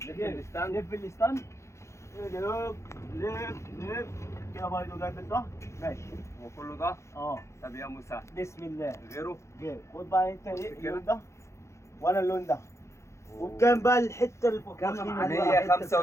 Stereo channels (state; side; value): late; right; 0.14 ms